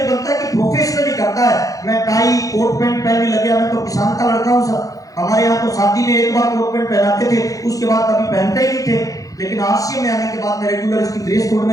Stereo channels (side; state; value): right; late; 0.17 ms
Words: बनता है कि प्रोफेशनली करता है। मैं टाई कोट पैंट पहनने लग गया। मैं तो किसान का लड़का हूँ सर। हमारे यहाँ तो शादी में एक बार कोट पैंट पहनाते थे, उसके बाद कभी पहनते ही नहीं थे। लेकिन आरसीएम में आने के बाद मैं रेगुलर इसकी ड्रेस कोड